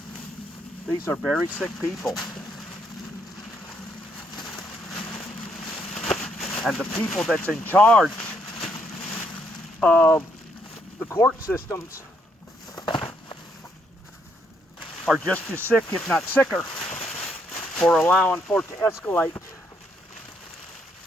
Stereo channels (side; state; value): both; normal; correlation 0.73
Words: These are very sick people. And the people that's in charge of the court systems are just as sick, if not sicker, for allowing for it to escalate